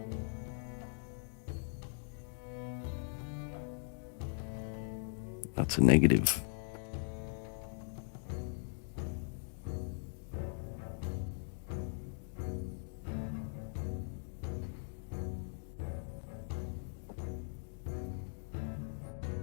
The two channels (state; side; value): silent; right; digital silence